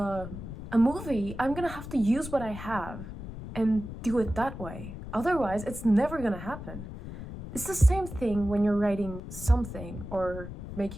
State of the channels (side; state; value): left; noise; rumble, 10 dB below the sound